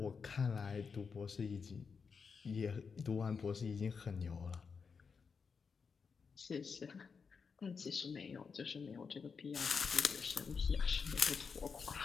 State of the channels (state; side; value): quieter; right; 5.6 dB